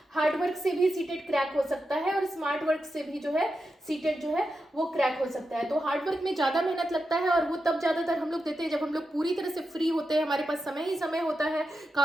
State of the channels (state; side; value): normal; both; correlation 0.88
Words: हार्ड वर्क से भी सीटेट क्रैक हो सकता है और स्मार्ट वर्क से भी जो है सीटेट जो है वो क्रैक हो सकता है। तो हार्ड वर्क में ज़्यादा मेहनत लगता है और वो तब ज़्यादातर हम लोग देते हैं जब हम लोग पूरी तरह से फ्री होते हैं, हमारे पास समय ही समय होता है,